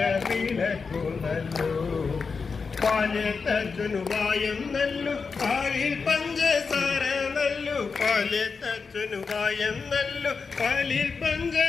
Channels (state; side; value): quieter; right; 5.0 dB